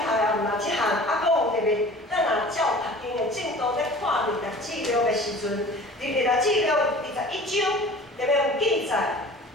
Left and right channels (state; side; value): normal; both; correlation 0.43